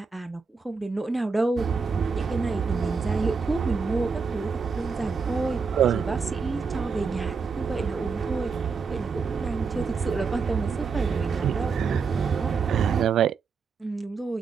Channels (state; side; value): quieter; left; 5.1 dB